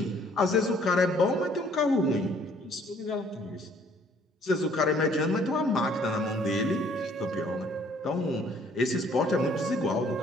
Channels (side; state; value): both; normal; correlation 0.60